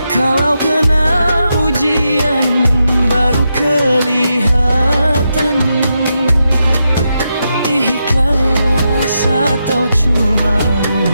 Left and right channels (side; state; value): both; inverted; correlation -0.85